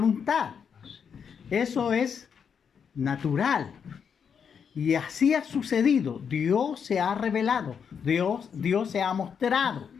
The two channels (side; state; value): right; quieter; 7.0 dB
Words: Eso es natural. Y así ha sucedido. Dios se ha revelado. Dios se ha mostrado.